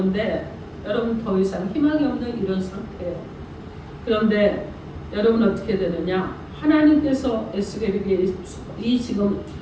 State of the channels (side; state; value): both; identical; correlation 1.00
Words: 여러분 더 이상 희망이 없는 이런 상태예요. 그런데 여러분 어떻게 되느냐? 하나님께서 에스겔에게 이 지금